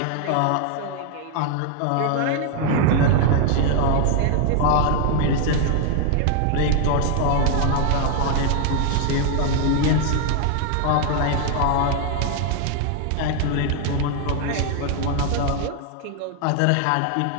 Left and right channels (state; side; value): different; both; correlation 0.00